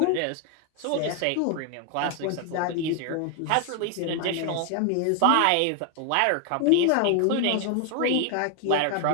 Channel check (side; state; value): both; different; correlation 0.00